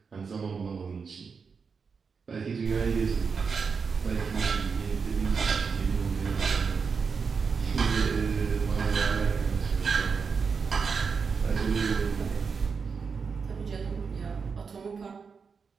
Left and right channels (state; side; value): quieter; left; 5.5 dB